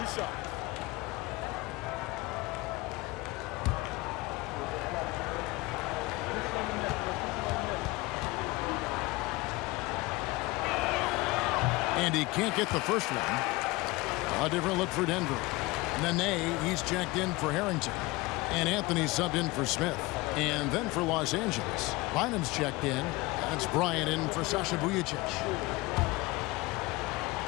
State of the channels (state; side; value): quieter; right; 22.0 dB